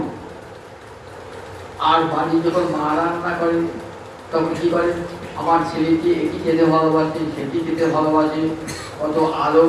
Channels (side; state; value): both; identical; correlation 1.00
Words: আর বাড়ি যখন মা রান্না করে তখন কি করে, আমার ছেলেকে এটি খেতে ভালোবাসে, সেটি খেতে ভালোবাসে, কত আদর